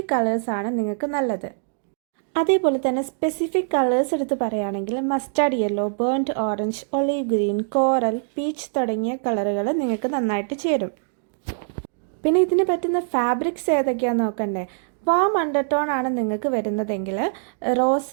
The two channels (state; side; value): silent; left; digital silence